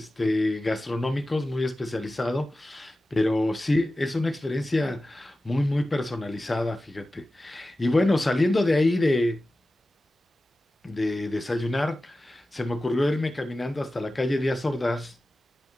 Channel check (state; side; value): normal; both; correlation 0.95